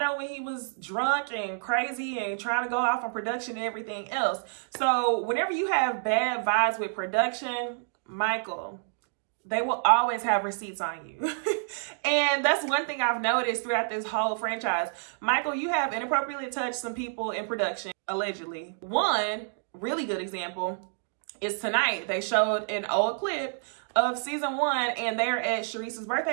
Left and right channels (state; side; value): silent; left; digital silence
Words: when he was drunk and crazy and trying to go off on production and everything else. So whenever you have bad vibes with production, Michael, they will always have receipts on you. And that's one thing I've noticed throughout this whole franchise. Michael, you have inappropriately touched some people in production, allegedly. One really good example is tonight. They showed an old clip of season 1, and they're at Sharice's